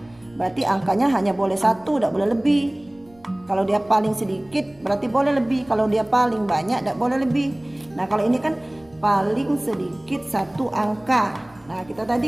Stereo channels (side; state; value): right; noise; rumble, 29 dB below the sound